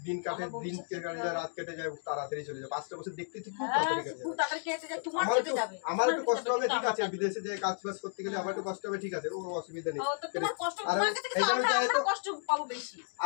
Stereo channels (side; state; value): right; silent; digital silence